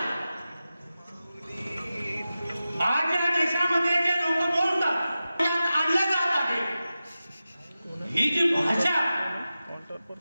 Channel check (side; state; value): both; inverted; correlation -0.94